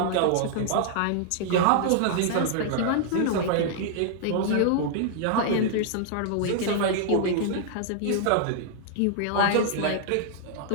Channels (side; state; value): both; different; correlation -0.01